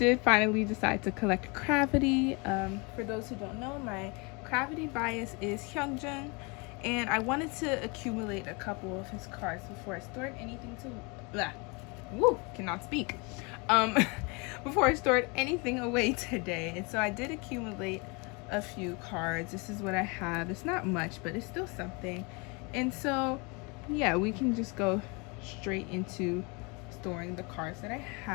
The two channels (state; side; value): quieter; right; 30.0 dB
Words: finally decide to collect cravity. For those who don't know, my cravity bias is hyeongjun, and I wanted to accumulate a couple of his cards before I stored anything cannot speak. Before I stored anything away today. And so I did accumulate a few cards. This is what I have. It's not much, but it's still something. And so yeah, we can just go straight into storing the cards that I